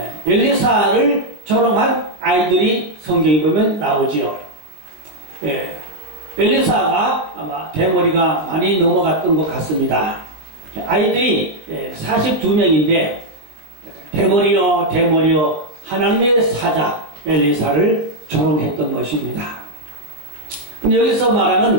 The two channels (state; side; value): late; left; 20 ms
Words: 엘리사를 조롱한 아이들이 성경에 보면 나오지요. 엘리사가 아마 대머리가 많이 넘어갔던 것 같습니다. 아이들이 42명인데 대머리요 하나님의 사자 엘리사를 조롱했던 것입니다. 근데 여기서